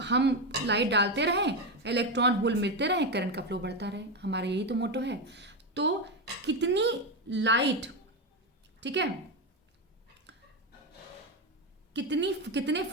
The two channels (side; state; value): both; normal; correlation 0.12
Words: हम लाइट डालते रहें, इलेक्ट्रॉन होल मिलते रहें, करंट का फ्लो बढ़ता रहे, हमारा यही तो मोटो है। तो कितनी लाइट, ठीक है, कितने